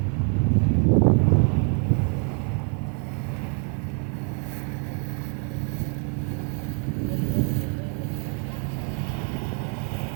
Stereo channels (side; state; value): left; quieter; 39.0 dB